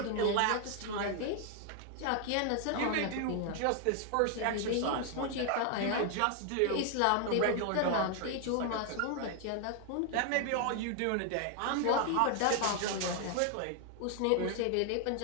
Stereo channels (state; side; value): different; both; correlation 0.00